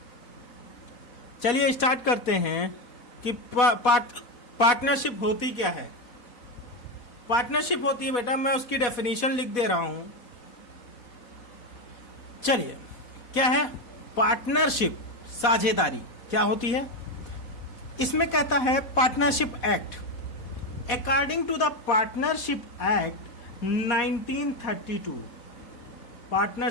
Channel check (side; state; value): right; late; 4.1 ms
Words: चलिए स्टार्ट करते हैं कि पार्टनरशिप होती क्या है। पार्टनरशिप होती है बेटा, मैं उसकी डेफिनेशन लिख दे रहा हूं। चलिए, क्या है पार्टनरशिप? साझेदारी क्या होती है? इसमें कहता है partnership act. According to the partnership act 1932,